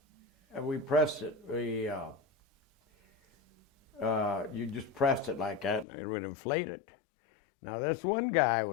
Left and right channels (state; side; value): drops out; right; at 5.9 s